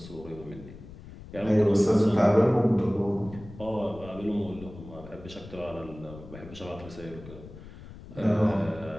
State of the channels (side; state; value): left; noise; rumble, 16 dB below the sound